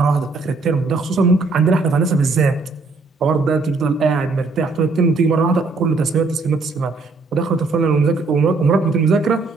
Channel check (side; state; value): left; quieter; 3.9 dB